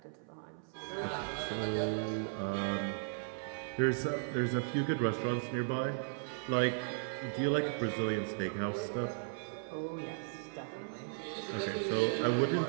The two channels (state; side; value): silent; left; 54 dB below the other